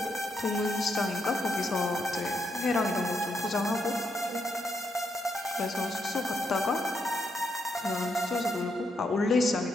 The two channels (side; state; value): both; normal; correlation 0.79